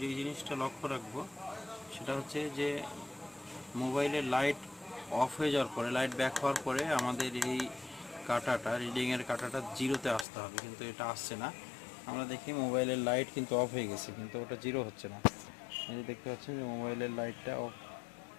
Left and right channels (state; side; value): drops out; right; at 10.2 s